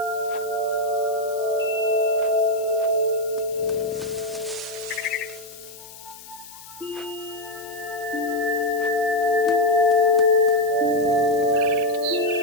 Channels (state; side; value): noise; left; hiss, 17 dB below the sound